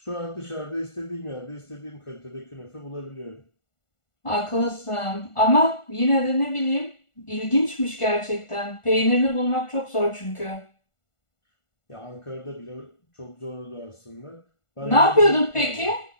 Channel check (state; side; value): late; right; 1.5 ms